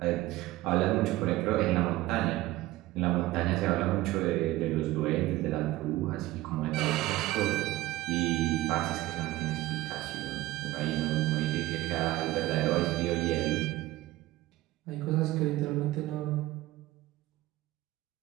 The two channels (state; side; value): quieter; left; 17.5 dB